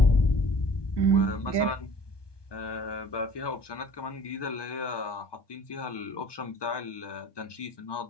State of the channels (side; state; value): right; late; 1.2 ms